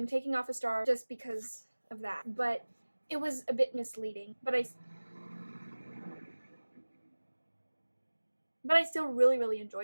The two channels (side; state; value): both; inverted; correlation -1.00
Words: taking off a star just because of that, but it was a bit misleading, but I still really, really